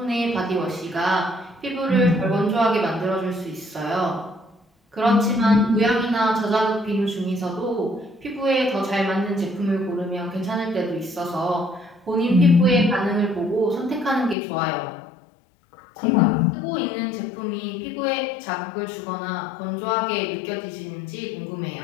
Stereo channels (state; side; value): drops out; right; at 14.4 s